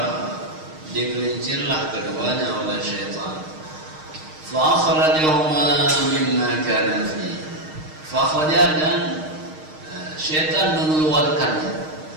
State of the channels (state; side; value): late; left; 6.4 ms